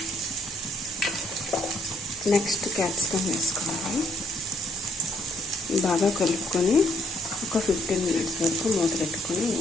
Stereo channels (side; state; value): both; normal; correlation 0.69